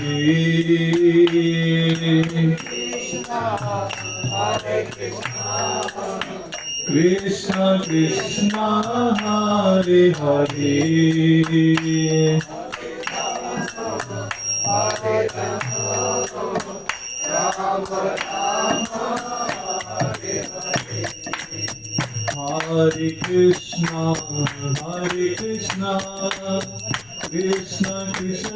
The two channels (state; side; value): noise; left; rumble, 28 dB below the sound